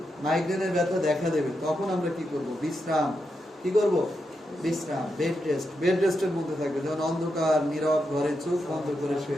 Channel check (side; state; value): both; normal; correlation 0.85